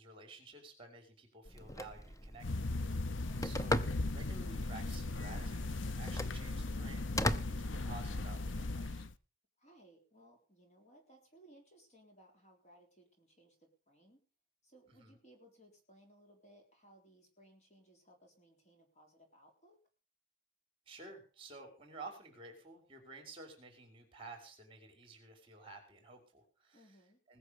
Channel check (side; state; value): both; normal; correlation 0.67